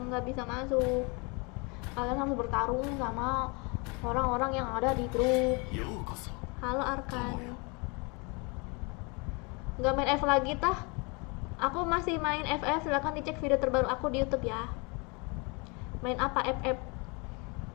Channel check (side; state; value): right; quieter; 30.4 dB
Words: nggak bisa masuk. Kalian harus bertarung sama orang-orang yang ada di grup. ようこそ。 Halo Arkan. Nggak main F lagi tah? Aku masih main FF, silahkan dicek video terbaru aku di YouTube ya. Main apa FF?